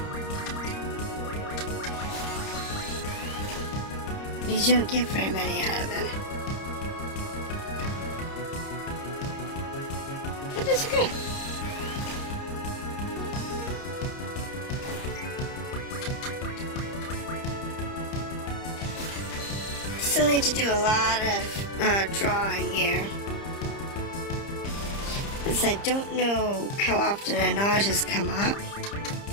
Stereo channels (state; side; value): late; right; 30 ms